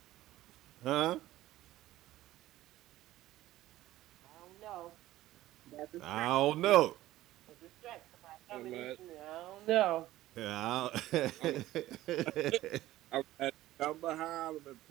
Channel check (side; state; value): left; quieter; 15.4 dB